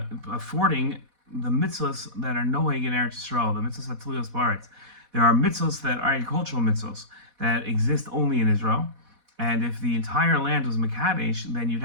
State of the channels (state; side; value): late; left; 4.1 ms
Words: the mitzvahs that are noeg in Eretz Yisrael, the mitzvahs hatuliyos ba'aretz. There are mitzvahs that are agricultural mitzvahs that exist only in Israel, and if the entire land was Mekadesh, then you'd